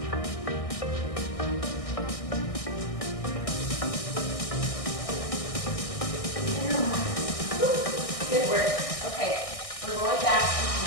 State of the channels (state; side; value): late; right; 1.6 ms